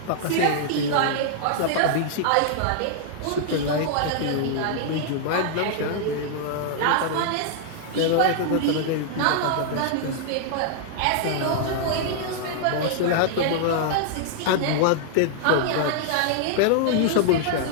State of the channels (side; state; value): both; different; correlation -0.01